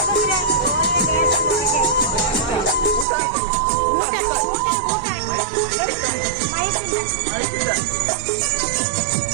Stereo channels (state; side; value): drops out; left; at 3.1 s